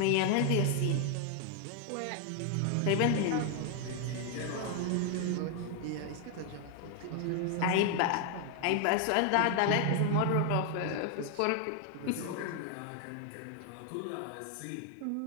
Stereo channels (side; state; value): both; different; correlation 0.00